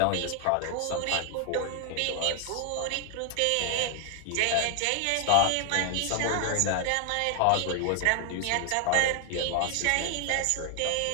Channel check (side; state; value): both; different; correlation 0.00